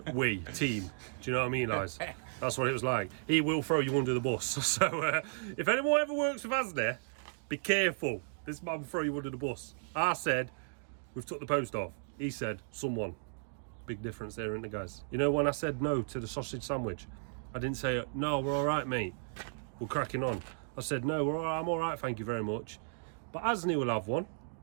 we, team. Do you know what I mean, Liz? That's what it was like. He will throw you under the bus. So if anyone ever works with Asni, be careful. This man will throw you under the bus. I said, we've took the post off. He said, someone. Big difference there, isn't it, guys? You know, when I said no to the sausage sandwich, I didn't say, no, we're all right, mate. We're cracking on. I said, no, we're all right, I'm all right, thank you very much. But Asni will have one.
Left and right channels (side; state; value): left; silent; digital silence